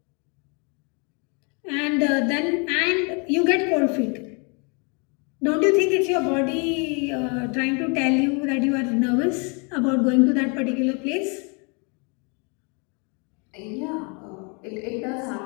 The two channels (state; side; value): quieter; right; 34.1 dB